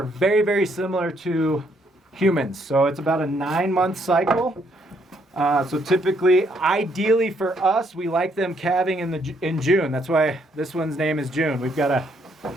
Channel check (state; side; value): normal; both; correlation 0.71